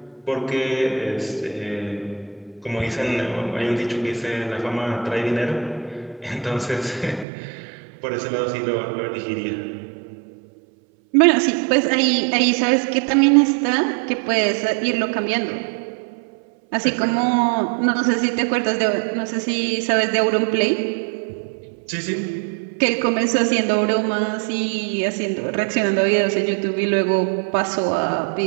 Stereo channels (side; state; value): left; drops out; at 7.2 s